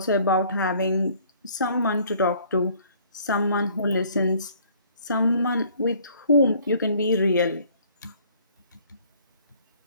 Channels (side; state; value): both; inverted; correlation -0.58